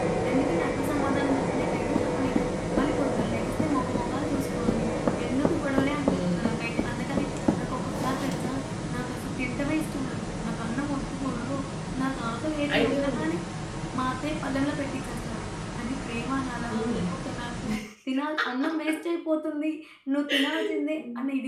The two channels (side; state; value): both; identical; correlation 1.00